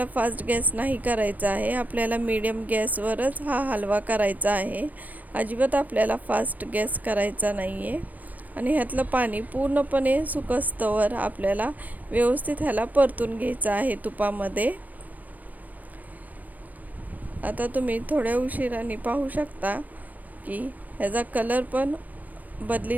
फास्ट गॅस नाही करायचा आहे, आपल्याला मीडियम गॅसवरच हा हलवा करायचा आहे। अजिबात आपल्याला फास्ट गॅस करायचा नाही आहे। आणि ह्यातलं पाणी पूर्णपणे सुकस्तवर आपल्याला व्यवस्थित ह्याला परतून घ्यायचं आहे तुपामध्ये। आता तुम्ही थोड्या उशिराने पाहू शकता की ह्याचा कलर पण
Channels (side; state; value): left; late; 0.080 ms